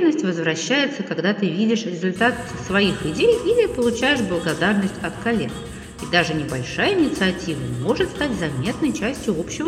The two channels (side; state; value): both; identical; correlation 1.00